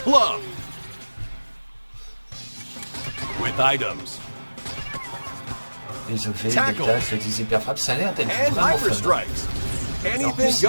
club. With items, les effets, les tâches, les hyperfrappes, ça a l'air d'être and vraiment hyper fun. strikes. Anything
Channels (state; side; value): inverted; both; correlation -1.00